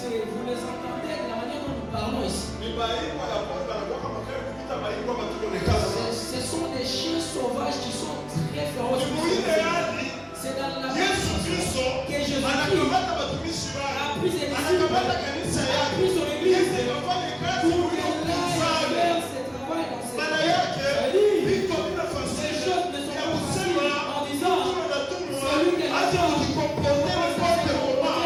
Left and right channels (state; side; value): identical; both; correlation 1.00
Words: vous les entendez de la manière dont nous parlons ici. Ni maibwa ya pori banakuwa kama kale kupita maibwa batukonekana sana. Ce sont des chiens sauvages qui sont très féroces. Mwile hadi C'est dans la Yesu Kristo que Jésus anakamata watumishi a wake, pris ses anakamata disciples, kanisa a yake, pris son église Yesu akafanya kazi pour iliyo qu'elle aille kufanya. faire ce travail dans cette Maana yake vitu bila Ces fasili choses ne sont ya pas kusema faciles en disant mtu anatumwa celui qui est acha là-bas, kujikomporte n'importe